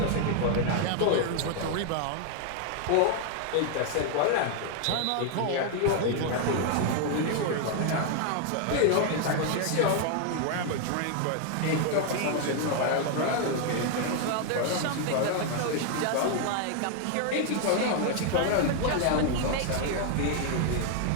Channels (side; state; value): both; different; correlation 0.00